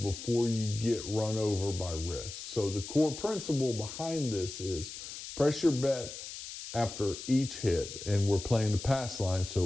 you get run over by risk. So the core principle behind this is press your bet after each hit, and we're playing the pass line,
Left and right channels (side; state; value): left; noise; hiss, 10 dB below the sound